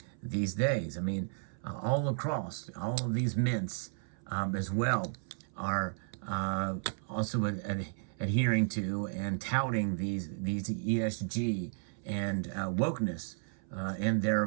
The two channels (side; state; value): left; silent; 55 dB below the other